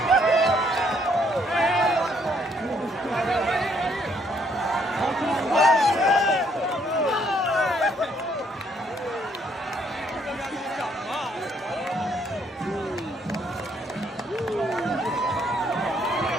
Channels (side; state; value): both; normal; correlation 0.68